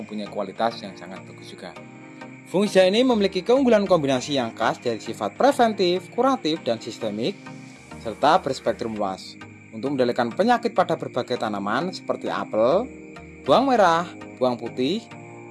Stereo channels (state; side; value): identical; both; correlation 1.00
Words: kualitas yang sangat bagus juga. Fungisida ini memiliki keunggulan kombinasi yang khas dari sifat preventif, kuratif, dan sistemik, serta berspektrum luas untuk mengendalikan penyakit pada berbagai tanaman seperti apel, bawang merah, bawang putih,